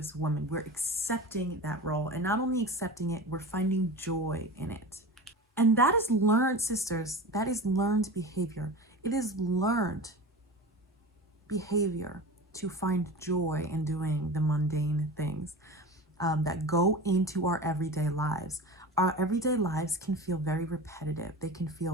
women. We're accepting that role, and not only accepting it, we're finding joy in it. And that is learned, sisters, that is learned behavior. It is learned behavior to find joy in doing the mundane things that go into our everyday lives. Our everyday lives can feel very repetitive. They can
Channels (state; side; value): normal; both; correlation 0.32